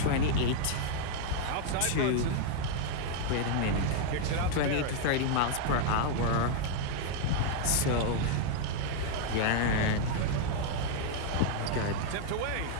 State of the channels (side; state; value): both; different; correlation 0.00